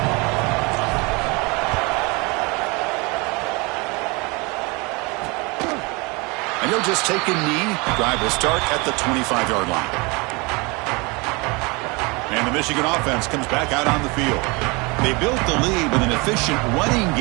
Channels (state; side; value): quieter; left; 27.3 dB